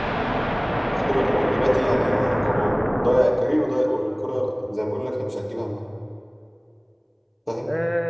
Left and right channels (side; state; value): both; identical; correlation 1.00